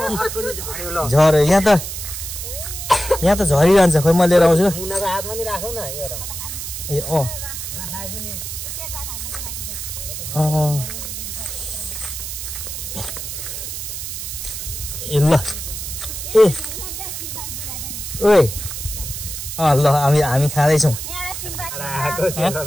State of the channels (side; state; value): right; noise; hiss, 6 dB below the sound